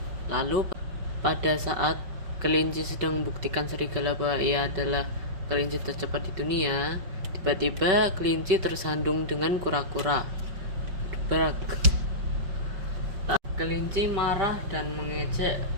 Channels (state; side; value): late; left; 5.5 ms